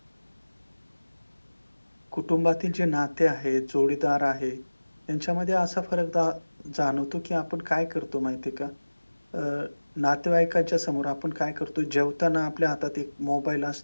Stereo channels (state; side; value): inverted; both; correlation -1.00